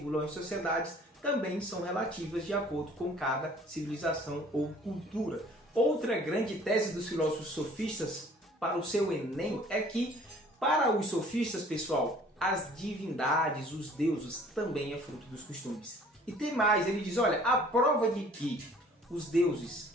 as sociedades também são relativas de acordo com cada civilização ou cultura. Outra grande tese dos filósofos sofistas para o seu Enem é que, para os sofistas, pessoal, as divindades, os deuses, também é fruto dos costumes. E tem mais, ele diz, olha, a prova de que os deuses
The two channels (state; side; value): normal; both; correlation 0.53